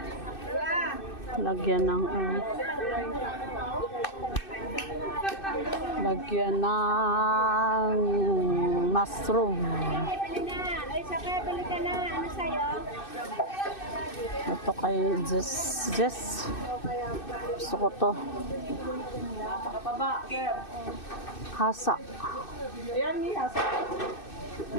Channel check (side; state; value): right; late; 2.6 ms